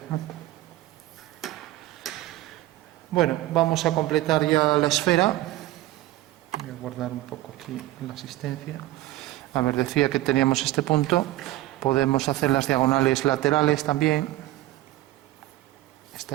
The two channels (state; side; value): quieter; left; 16.2 dB